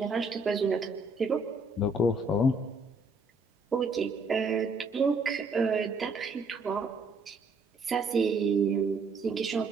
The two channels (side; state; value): left; quieter; 3.1 dB